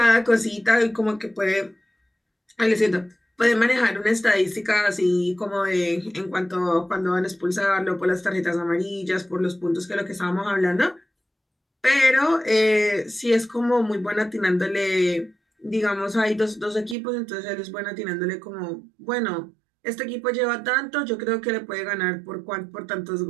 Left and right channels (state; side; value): drops out; left; at 16.9 s